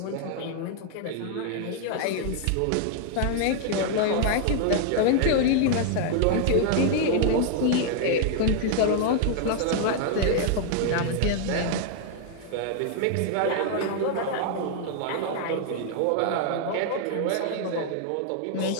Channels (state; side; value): different; both; correlation 0.00